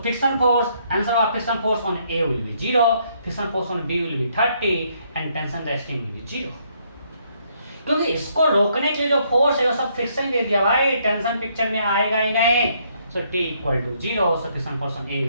force, answer of friction force on A will be 0, friction force on B will be 30 and tension resting will be 0। क्योंकि इसको रोकने के लिए जो फोर्स है वो सब फ्रिक्शन दे दिया भाई, टेंशन पिक्चर में आएगा ही नहीं। So T equal to 0, so friction force on A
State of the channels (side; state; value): both; inverted; correlation -0.70